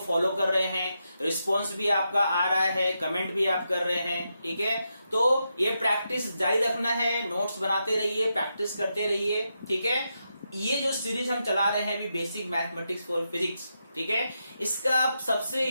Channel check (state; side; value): inverted; both; correlation -0.85